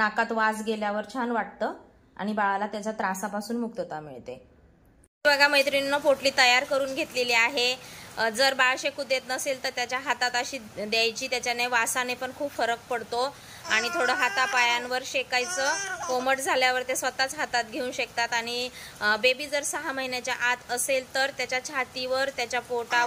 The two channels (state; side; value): identical; both; correlation 1.00